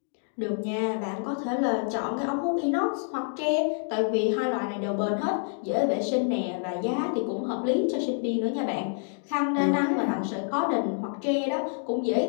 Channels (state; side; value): silent; right; 60 dB below the other